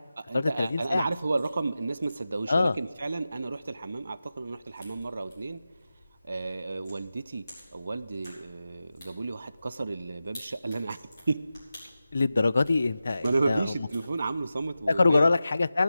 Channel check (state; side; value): inverted; both; correlation -0.93